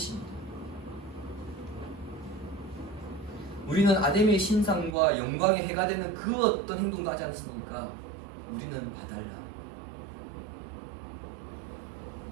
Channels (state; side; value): drops out; left; at 5.0 s